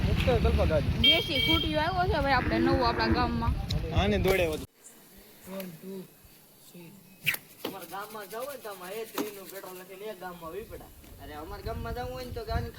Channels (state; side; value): identical; both; correlation 1.00